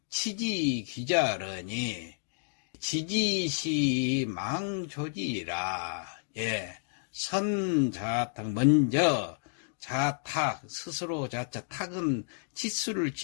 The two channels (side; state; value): right; silent; digital silence